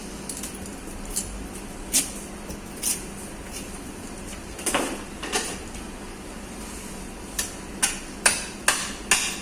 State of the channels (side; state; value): both; identical; correlation 1.00